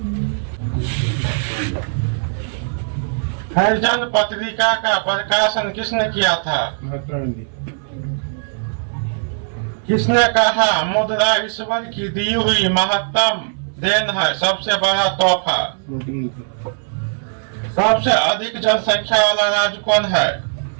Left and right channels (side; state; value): left; silent; 66 dB below the other